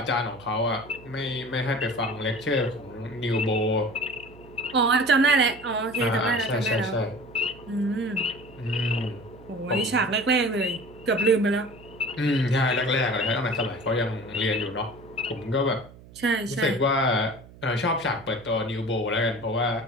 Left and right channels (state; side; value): noise; right; hum, 21 dB below the sound